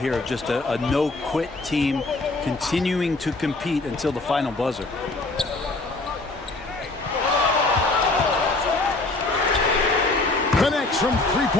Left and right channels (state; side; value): quieter; right; 3.2 dB